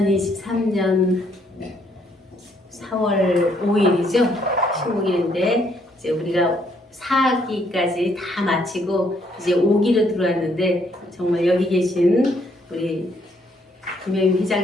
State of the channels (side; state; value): both; normal; correlation 0.69